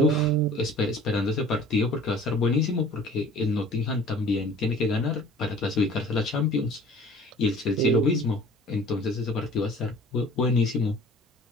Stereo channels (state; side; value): normal; both; correlation 0.47